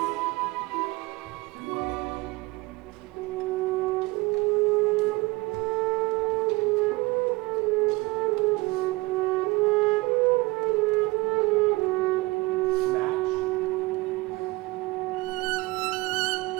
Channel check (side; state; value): left; quieter; 23.1 dB